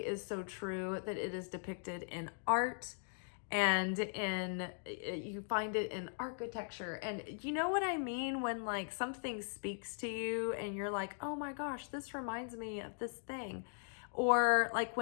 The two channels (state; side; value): silent; right; digital silence